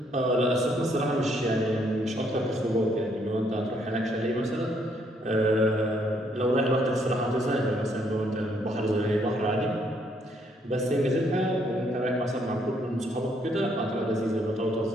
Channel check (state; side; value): normal; both; correlation 0.70